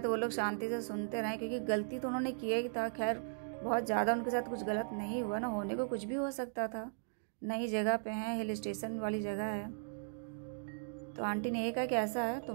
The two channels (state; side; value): silent; left; digital silence